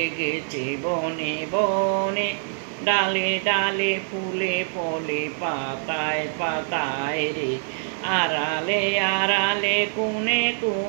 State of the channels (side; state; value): left; silent; 62 dB below the other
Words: বনে বনে। ডালে ডালে ফুলে ফলে পাতায় পাতায় রে, আড়ালে আড়ালে কোণে